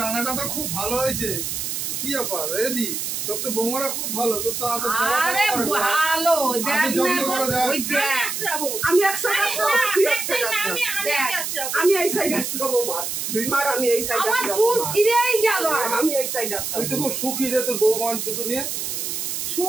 রান্নাটা তো খুব ভালো হয়েছে। কি ব্যাপার রেদি? তোর তো বৌমারা খুব ভালো, তোর তো এত সেবা আরে করা হয় না। ভালো, দেখ আমি যত্ন না, করে দেখ। ওই দেখ। আসতে যাবো। আমি এক সাইড আসবো, তুই এক সাইড না, আসবো। আমি আসতে যাবো। আমি এই সাইড আসবো মার, আমি এই সাইড আমার আসবো চুল ছিঁড়েই গেল। আমি এই সাইড আসবো। তুই তো খুব সুখী রে তোর বৌমা দুটো নিয়ে।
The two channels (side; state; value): right; noise; hiss, 3 dB below the sound